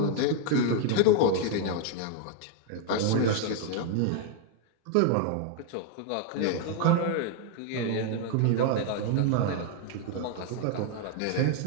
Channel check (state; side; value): different; both; correlation 0.00